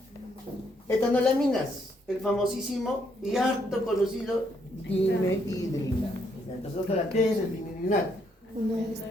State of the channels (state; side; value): normal; both; correlation 0.73